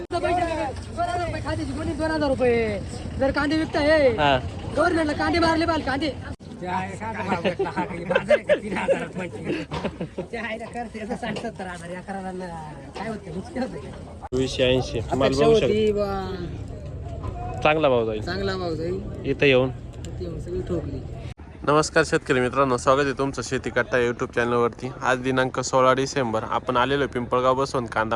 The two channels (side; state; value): both; identical; correlation 1.00